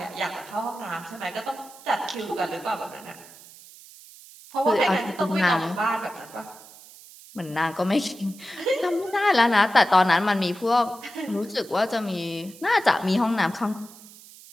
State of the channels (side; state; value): right; noise; hiss, 20 dB below the sound